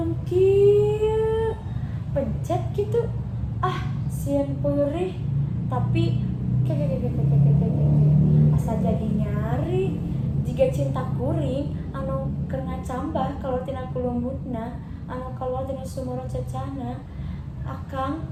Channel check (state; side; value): identical; both; correlation 1.00